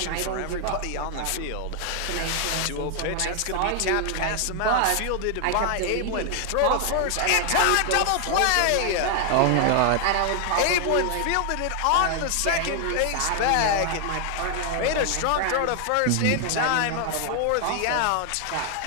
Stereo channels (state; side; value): different; both; correlation 0.00